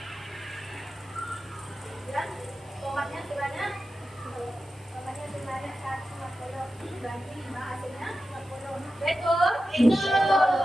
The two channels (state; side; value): noise; right; hiss, 29 dB below the sound